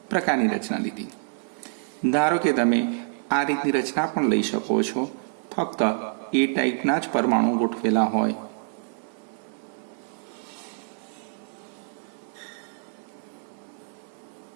પ્રકારની રચના લીધી. ધારો કે તમે આ રીતની રચના પણ લઈ શકો છો. ફક્ત એ ટાઈપના જ પરમાણુ ગોઠવેલા હોય.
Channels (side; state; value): left; silent; 60 dB below the other